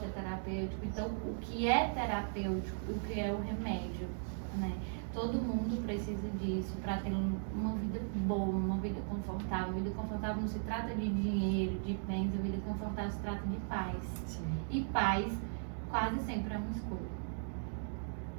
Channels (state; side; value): silent; left; digital silence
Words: é terapêutico. Então, o que é terapêutico, o que é o remédio, né? Todo mundo precisa disso para ter uma vida boa, uma vida confortável. Vida confortável não se trata de dinheiro, de bens, a vida confortável se trata de paz. Sim. E paz quase sempre é uma escolha.